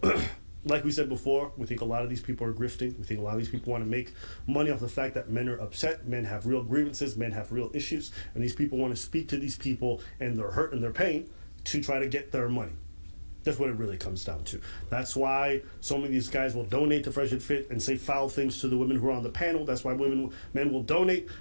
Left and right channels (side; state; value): both; inverted; correlation -1.00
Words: like we said before, we think a lot of these people are grifting. We think a lot of these people want to make money off the fact that men are upset. Men have real grievances. Men have real issues. And these people want to speak to these people and their hurt and their pain to try to get their money. That's what it really comes down to. That's why so many of these guys will donate to Fresh and Fit and say foul things to the women who are on the panel. That's why men will donate